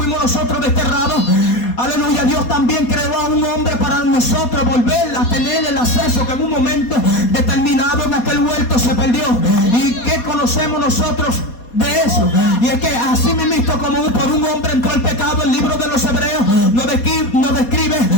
nosotros desterrados, aleluya, Dios también creó a un hombre para nosotros volver a tener el acceso que en un momento determinado en aquel huerto se perdió. ¿Y qué conocemos nosotros de eso? Y es que así mismo, como por un hombre entró el pecado, el libro de los Hebreos nos describe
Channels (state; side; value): late; right; 4.2 ms